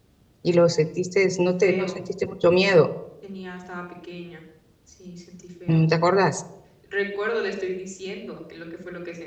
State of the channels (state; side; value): identical; both; correlation 1.00